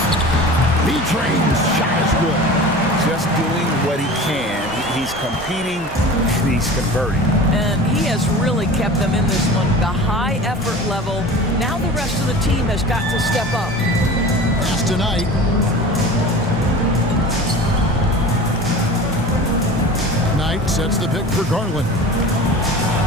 B-Train's shot is good. Just doing what he can. He's competing, and he's converting. And he has really kept them in this one. The high effort level. Now the rest of the team has got to step up. Pass tonight. Knight sets the pick for Garland.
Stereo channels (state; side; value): normal; both; correlation 0.37